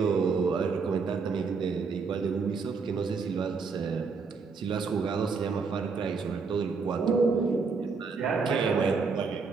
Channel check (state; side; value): quieter; left; 4.9 dB